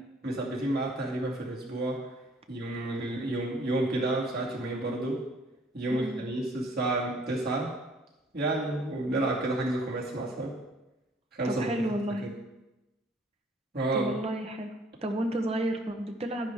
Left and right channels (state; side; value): normal; both; correlation 0.58